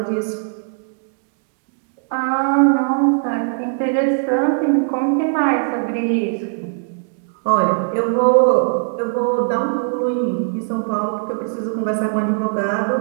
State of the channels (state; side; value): silent; left; 66 dB below the other